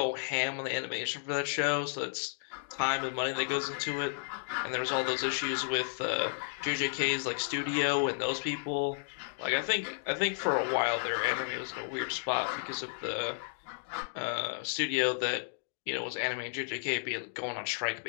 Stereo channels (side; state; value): right; silent; digital silence